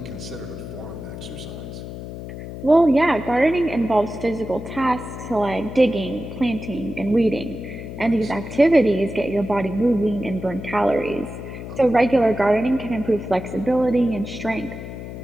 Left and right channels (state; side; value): noise; left; hum, 10 dB below the sound